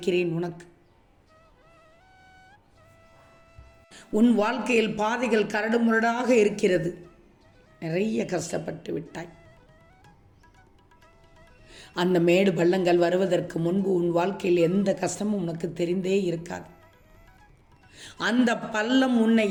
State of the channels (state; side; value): identical; both; correlation 1.00